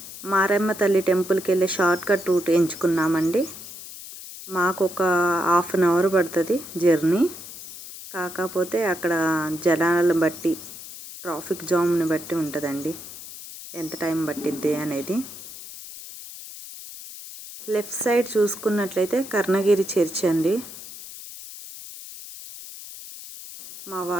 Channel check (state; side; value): noise; left; hiss, 13 dB below the sound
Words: మారమ్మ తల్లి టెంపుల్కి వెళ్ళే షార్ట్ కట్ రూట్ ఎంచుకున్నామండి. మాకు ఒక 1/2 అవర్ పడుతుంది జర్నీ. కాకపోతే అక్కడ జనాలను బట్టి, ట్రాఫిక్ జామ్ని బట్టి ఉంటుందండి ఎంత టైం పట్టిద్ది అనేది. లెఫ్ట్ సైడ్ చూసుకున్నట్లయితే కర్ణగిరి చర్చ్ అండి. మా